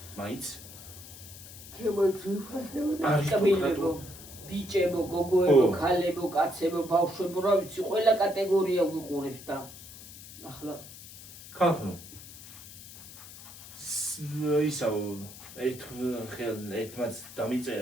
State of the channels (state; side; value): noise; left; hiss, 16 dB below the sound